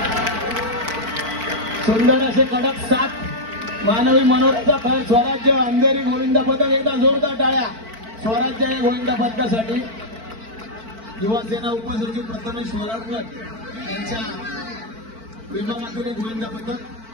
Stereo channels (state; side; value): late; left; 4.5 ms